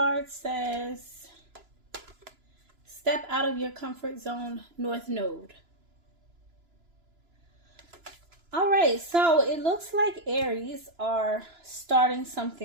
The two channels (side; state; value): left; late; 3.0 ms